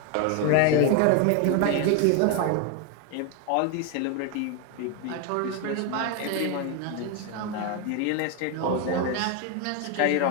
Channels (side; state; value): both; different; correlation 0.01